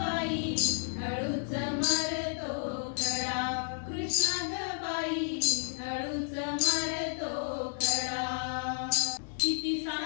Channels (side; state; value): right; silent; digital silence